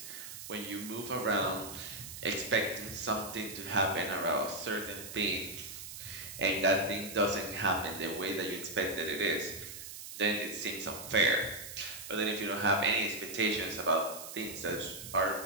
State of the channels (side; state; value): right; noise; hiss, 11 dB below the sound